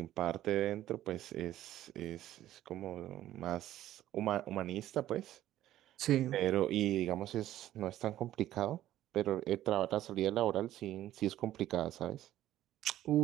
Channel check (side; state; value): left; quieter; 13.3 dB